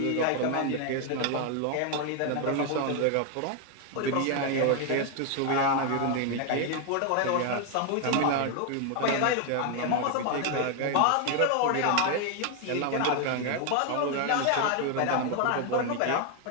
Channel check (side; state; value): both; different; correlation 0.01